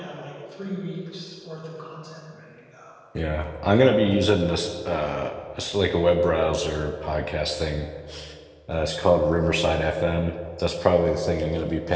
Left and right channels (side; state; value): both; identical; correlation 1.00